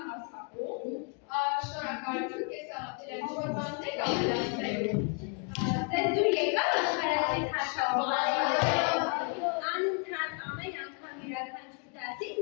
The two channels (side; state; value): right; quieter; 36.3 dB